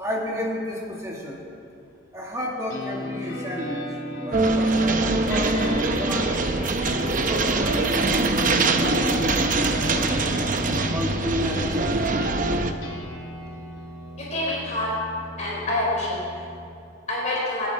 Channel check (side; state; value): both; normal; correlation 0.35